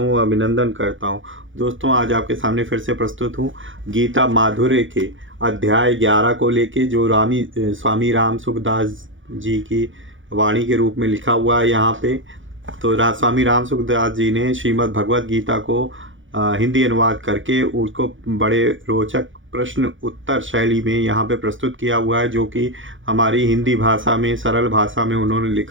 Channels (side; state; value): left; late; 0.56 ms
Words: अभिनंदन करता हूँ। दोस्तों, आज आपके सामने फिर से प्रस्तुत हूँ गीता माधुर्य के अध्याय 11 को लेके, जो स्वामी राम सुखदास जी की वाणी के रूप में लिखा हुआ है यहाँ पे। तो स्वामी राम सुखदास जी ने श्रीमद् भगवद गीता को हिंदी अनुवाद करके उसको बड़े रोचक प्रश्न उत्तर शैली में यहाँ पे प्रस्तुत किया हुआ है, जो कि हमारी हिंदी भाषा में, सरल भाषा में उन्होंने